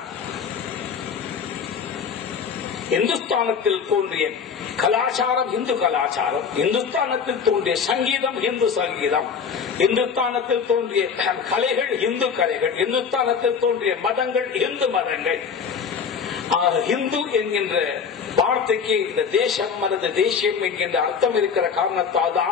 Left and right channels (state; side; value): quieter; right; 6.4 dB